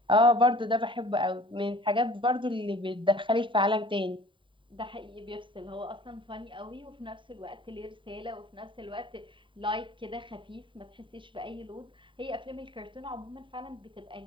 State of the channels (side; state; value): left; late; 0.24 ms